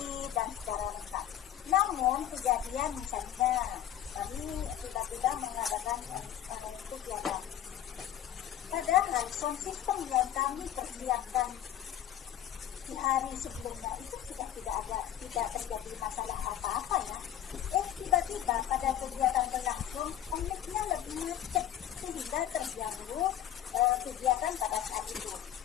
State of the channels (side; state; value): right; quieter; 11.1 dB